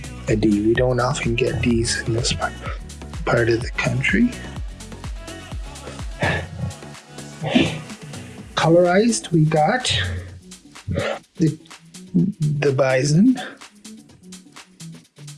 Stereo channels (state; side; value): identical; both; correlation 1.00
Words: a D. We don't often get Ds in this part of the country. Colorized, we got the bison.